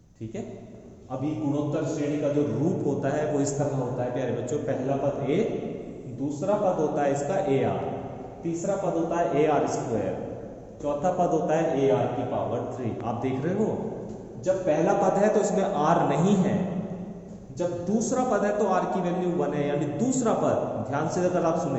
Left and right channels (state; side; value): identical; both; correlation 1.00